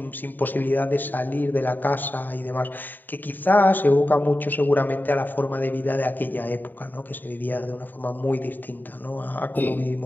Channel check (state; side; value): late; right; 0.089 ms